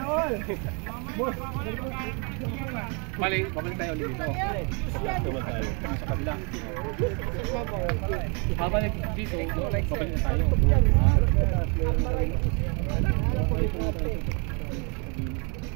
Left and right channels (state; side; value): quieter; left; 34.8 dB